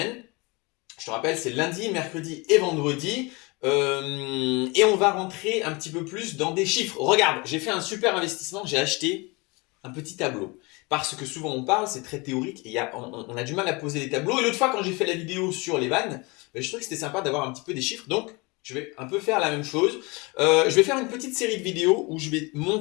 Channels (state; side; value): quieter; right; 26.8 dB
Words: Je te rappelle, c'est lundi, mercredi et vendredi. Et on va rentrer un petit peu plus dans des chiffres. Regarde, j'ai fait un super investissement, j'ai acheté un petit tableau. Parce que souvent on parle, c'est très théorique, et on a du mal à poser les tableaux. Et l'autre fois, quand j'ai fait la vidéo sur les vannes, je trouvais que c'était sympa d'avoir un petit peu des chiffres. Donc, je vais un peu faire la même chose. Je vais faire une petite série de vidéos où je vais